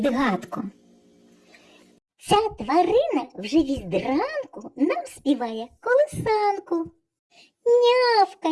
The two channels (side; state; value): both; identical; correlation 1.00